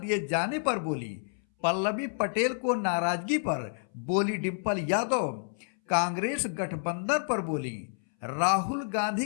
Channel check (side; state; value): right; silent; 58 dB below the other